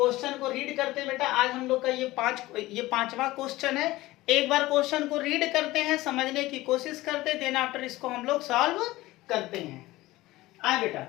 को रीड करते बेटा। आज हम लोग का ये पांचवा क्वेश्चन है। एक बार क्वेश्चन को रीड करते हैं, समझने की कोशिश करते, देन आफ्टर इसको हम लोग सॉल्व करते हैं। आए बेटा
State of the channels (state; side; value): quieter; right; 18.2 dB